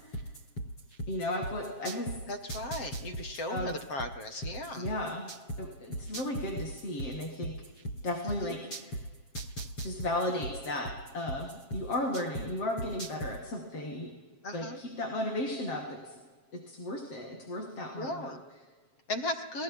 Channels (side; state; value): right; late; 7.5 ms